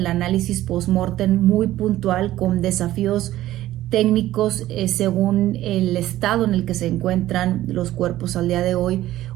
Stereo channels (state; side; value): quieter; left; 14.6 dB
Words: análisis post-mortem muy puntual, con desafíos técnicos según el estado en el que se encuentran los cuerpos al día de hoy.